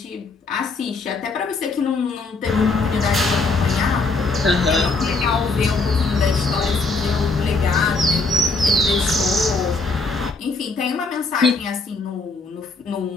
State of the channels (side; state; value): right; quieter; 3.6 dB